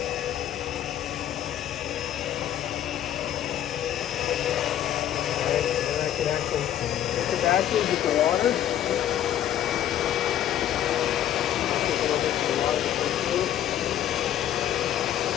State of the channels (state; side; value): quieter; right; 11.3 dB